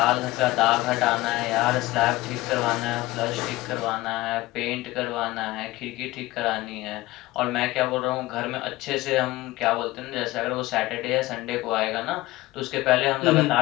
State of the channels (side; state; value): right; quieter; 18.8 dB